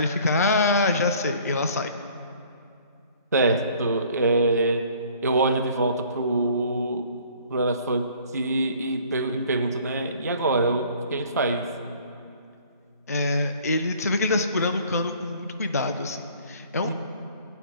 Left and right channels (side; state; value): both; inverted; correlation -0.54